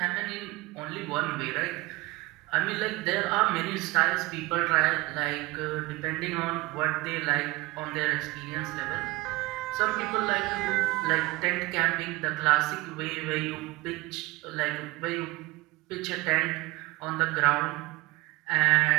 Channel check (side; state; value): left; quieter; 21.4 dB